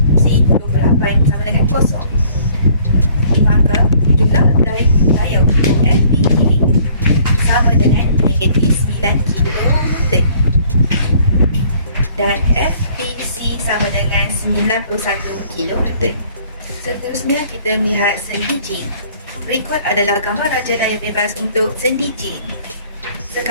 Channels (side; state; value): both; inverted; correlation -0.58